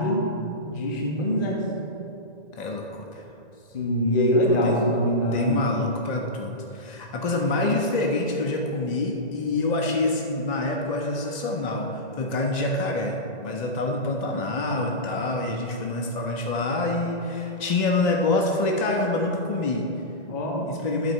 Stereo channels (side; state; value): right; late; 1.9 ms